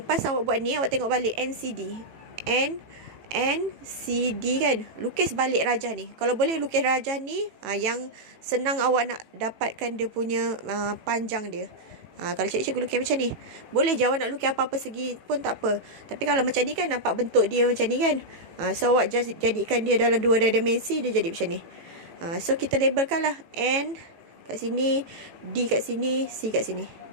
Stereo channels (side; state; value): left; late; 18 ms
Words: awak buat ni, awak tengok balik NCD. NCD kan. Lukis balik rajah ni. Kalau boleh lukis rajah ni, yang senang awak nak dapatkan dia punya panjang dia. Kalau cikgu lukis macam ni, boleh je awak nak lukis apa-apa segi pun tak apa. Tapi kalau macam ni kan nampak bentuk dia macam ni kan. So awak just jadikan dia dalam 2 dimensi, dia jadi macam ni. So kita labelkan lah N kat sini, D kat sini, C kat sini.